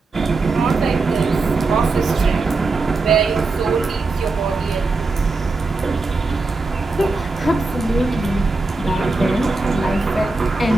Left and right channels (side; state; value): left; quieter; 3.6 dB